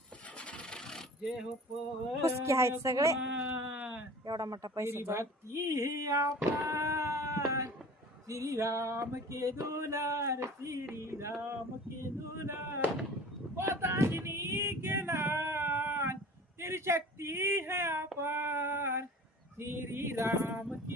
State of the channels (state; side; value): normal; both; correlation 0.42